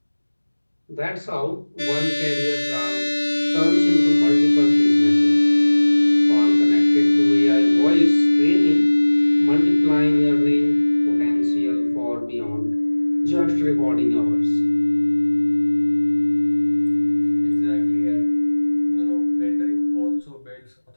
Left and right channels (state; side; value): inverted; both; correlation -1.00